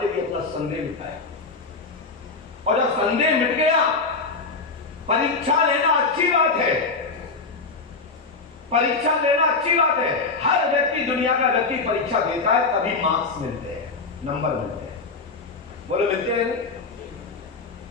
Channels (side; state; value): right; quieter; 4.1 dB